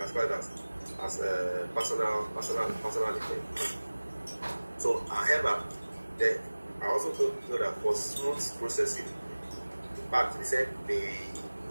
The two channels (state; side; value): inverted; both; correlation -1.00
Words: as personal effect. So, however, I also know that for smooth processing, in fact, they said